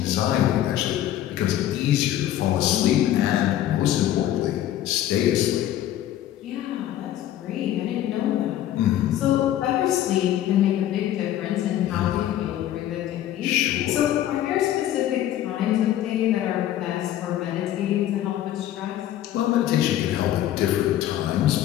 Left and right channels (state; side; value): quieter; right; 12.3 dB